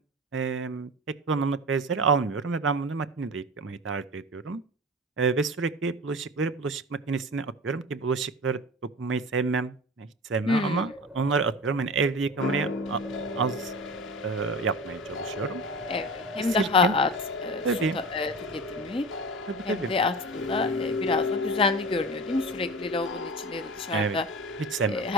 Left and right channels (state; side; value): normal; both; correlation 0.32